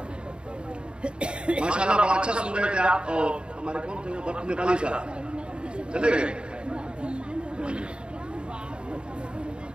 माशाअल्लाह बड़ा अच्छा सुन रहे थे आप। और हमारे कौन थे वो नेपाली साहब चले गए।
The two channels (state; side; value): late; left; 0.052 ms